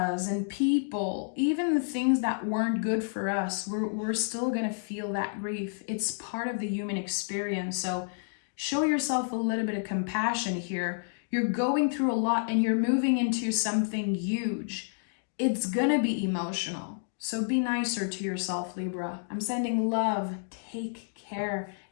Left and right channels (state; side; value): silent; right; digital silence